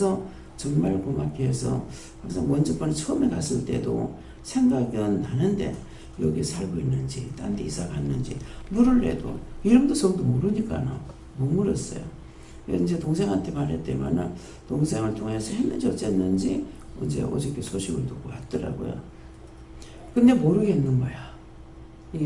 정말 고맙게 해서 항상 먼저번에 처음에 갔을 때도 생각은 나는데 여기 살고 있는지 딴 데 이사 갔는지 물을 내도 이름도 성도 모르니까 못 물었어요. 이제 동생한테 말했더니만은 동생을 통해서 했는지 어쨌는지 이제 어저께 소식을 듣고 왔더라고요. 근데 모르겠는 거야. 이게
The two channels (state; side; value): identical; both; correlation 1.00